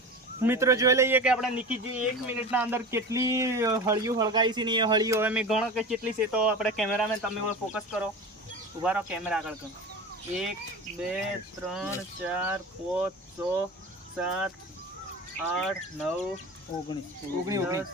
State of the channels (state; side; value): normal; both; correlation 0.31